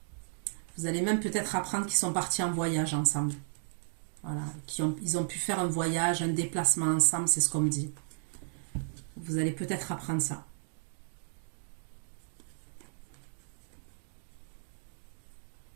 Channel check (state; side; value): silent; left; digital silence